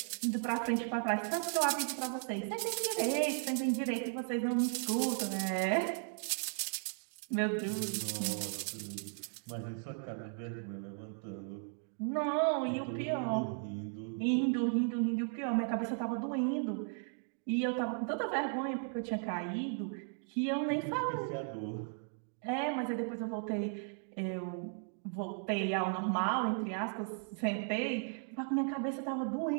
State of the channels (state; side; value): silent; left; 54 dB below the other